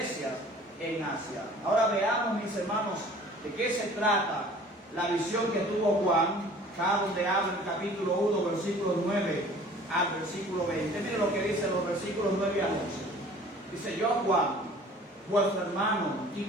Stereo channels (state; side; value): normal; both; correlation 0.49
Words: en Asia. Ahora veamos, mis hermanos, de qué se trata la visión que tuvo Juan, acá donde habla en el capítulo 1, versículos 9 al versículo 20. Miren lo que dicen los versículos 9 al 11. Dice: yo, Juan, vuestro hermano y